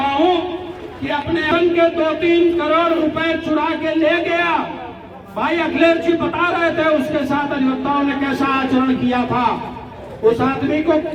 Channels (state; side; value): identical; both; correlation 1.00